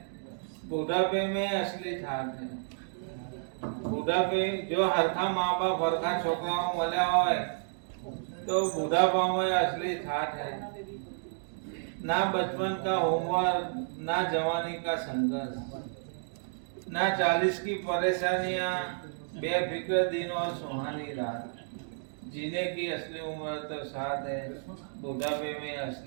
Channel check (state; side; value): silent; left; digital silence